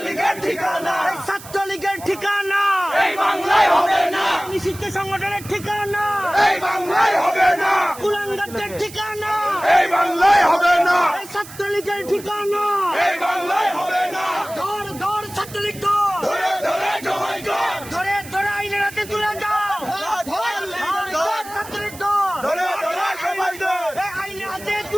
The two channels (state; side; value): noise; right; hiss, 16 dB below the sound